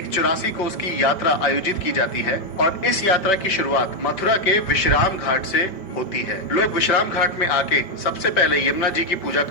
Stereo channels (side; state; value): right; late; 5.2 ms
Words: 84 कोस की यात्रा आयोजित की जाती है और इस यात्रा की शुरुआत मथुरा के विश्राम घाट से होती है। लोग विश्राम घाट में आके सबसे पहले यमुना जी की पूजा